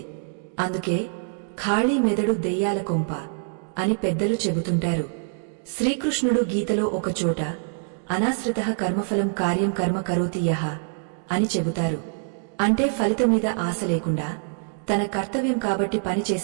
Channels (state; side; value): silent; left; digital silence